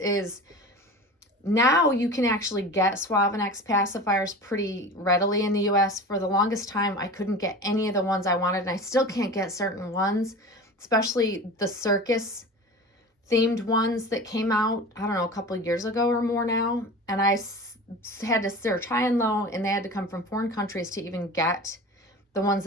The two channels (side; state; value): both; normal; correlation 0.34